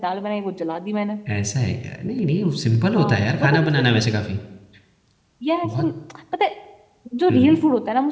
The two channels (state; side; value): identical; both; correlation 1.00